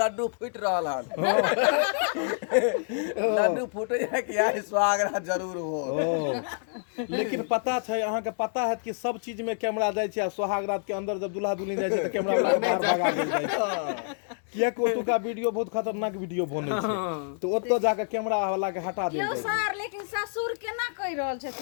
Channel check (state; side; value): silent; right; digital silence